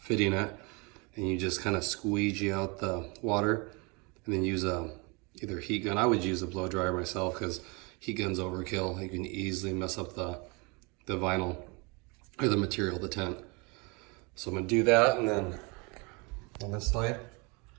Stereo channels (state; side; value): quieter; left; 29.6 dB